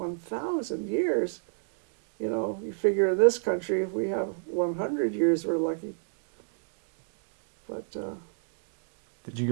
years. You figure in this country, if we have 100 years, we're lucky. But Did you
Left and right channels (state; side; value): silent; left; digital silence